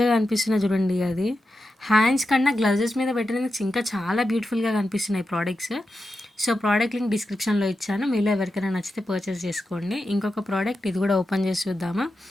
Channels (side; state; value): both; normal; correlation 0.89